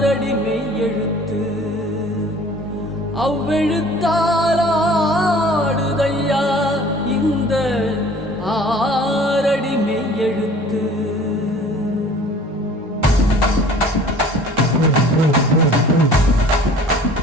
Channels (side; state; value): both; normal; correlation 0.49